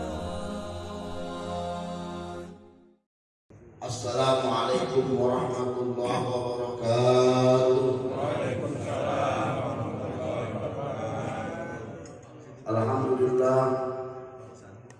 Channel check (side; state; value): both; identical; correlation 1.00